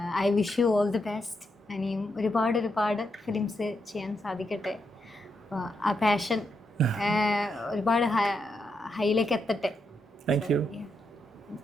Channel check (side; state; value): both; normal; correlation 0.82